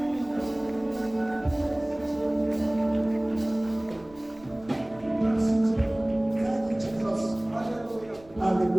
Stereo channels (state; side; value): noise; right; rumble, 25 dB below the sound